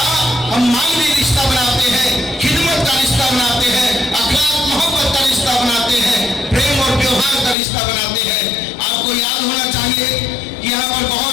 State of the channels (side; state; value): right; drops out; at 7.6 s